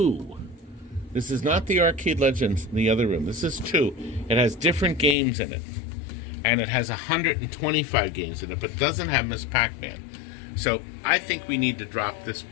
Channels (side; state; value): right; drops out; at 5.2 s